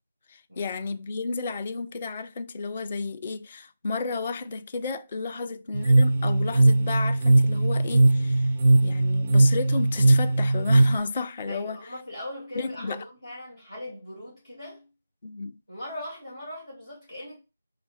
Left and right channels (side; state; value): both; inverted; correlation -0.96